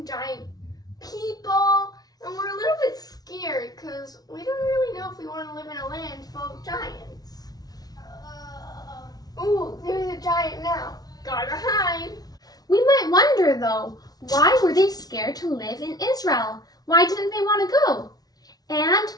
giant people, and we're a little bit scared because we don't really know if we want to live in a land full of giants. Ooh, there's a giant now. Gotta hide. We might wonder though, why were they scared to live in Israel? Why didn't they want to go? And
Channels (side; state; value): right; late; 0.19 ms